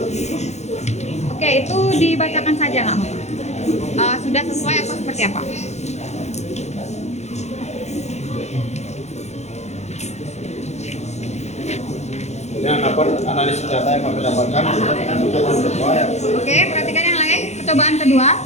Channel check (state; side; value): late; right; 0.32 ms